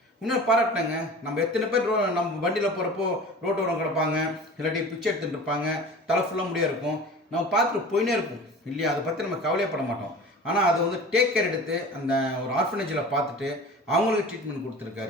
இன்னும் பாராட்டினாங்க. நம்ம எத்தனை பேர் நம்ம வண்டியில் போகிறப்போ ரோட்டோரம் கிடப்பாங்க, இல்லாட்டி பிச்சை எடுத்துகிட்டு இருப்பாங்க, தலை ஃபுல்லாக முடியாக இருக்கும், நம்ம பார்த்துட்டு போயினே இருக்கும் இல்லையா? அதை பற்றி நம்ம கவலையப்பட மாட்டோம். ஆனால் அதை வந்து டேக் கேர் எடுத்து அந்த ஒரு ஆர்ஃபனேஜில் பார்த்துட்டு அவங்களுக்கு ட்ரீட்மெண்ட்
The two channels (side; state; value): both; normal; correlation 0.38